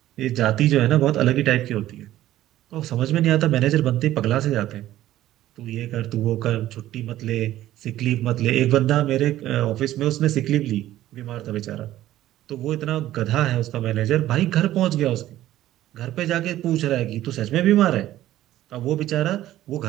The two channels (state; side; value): quieter; left; 14.0 dB